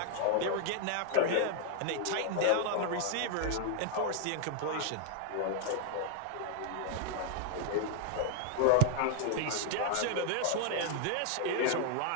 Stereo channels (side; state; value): both; different; correlation 0.00